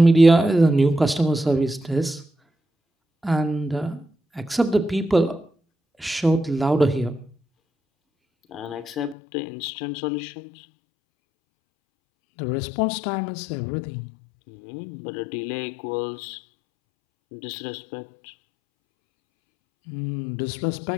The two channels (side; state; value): right; drops out; at 9.2 s